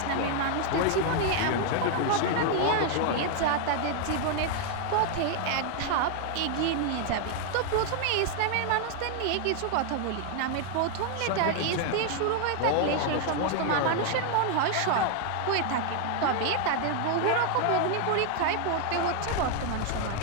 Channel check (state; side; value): different; both; correlation 0.00